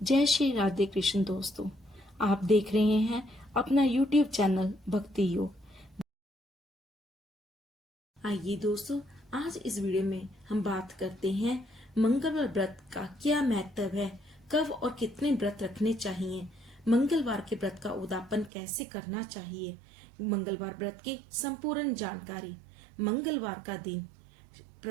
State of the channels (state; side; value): drops out; left; at 18.5 s